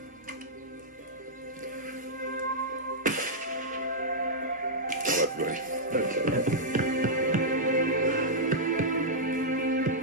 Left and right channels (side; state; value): both; normal; correlation -0.08